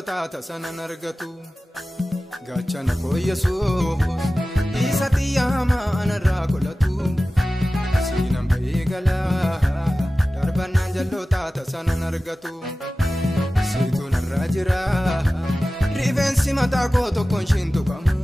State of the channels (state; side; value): normal; both; correlation 0.96